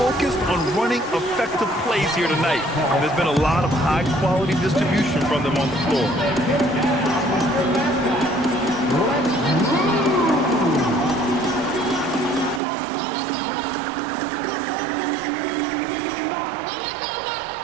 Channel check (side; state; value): left; drops out; at 12.6 s